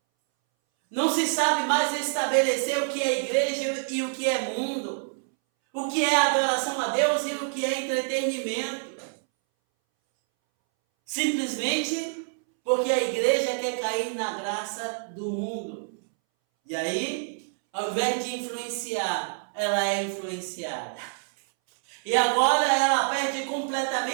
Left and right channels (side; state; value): left; silent; 60 dB below the other